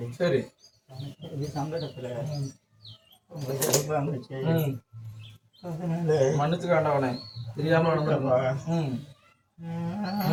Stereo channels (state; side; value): identical; both; correlation 1.00